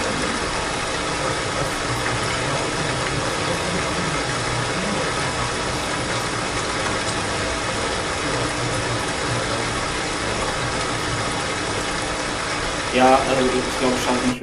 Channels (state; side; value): identical; both; correlation 1.00